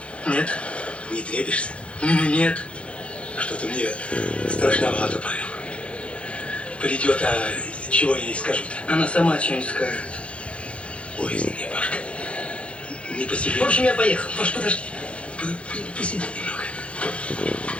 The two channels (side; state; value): right; late; 0.060 ms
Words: Нет. Не трепишься? Нет. Что-то мне страшновато, Павел. Придет, а чего я ей скажу-то? Она сама что-нибудь скажет. Ой, извини, Пашка. Не по себе. В общем, я поехал. Паш, подожди. Посиди немного.